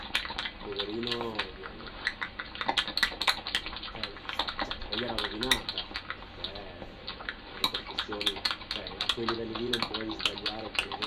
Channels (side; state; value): both; identical; correlation 1.00